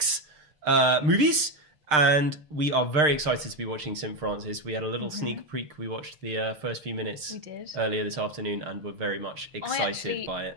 movies. And we are very excited to be watching St. Francis. We had a little sneak peek. We watched the first few minutes earlier this afternoon and were very much excited by it.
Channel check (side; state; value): left; late; 6.6 ms